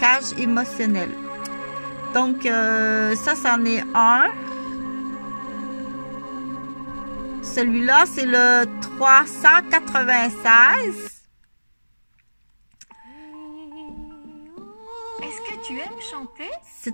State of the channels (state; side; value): inverted; both; correlation -1.00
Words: émotionnels. Donc ça c'en est un. Celui-là c'est le 396. Est-ce que tu aimes chanter